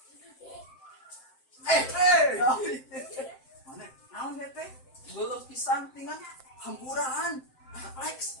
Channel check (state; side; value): late; right; 7.7 ms